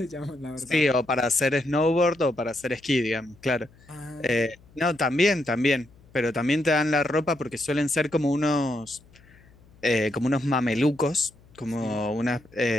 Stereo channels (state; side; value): noise; left; hum, 27 dB below the sound